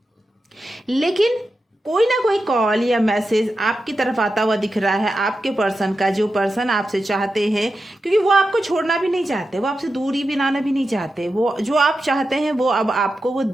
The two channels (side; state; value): both; normal; correlation 0.90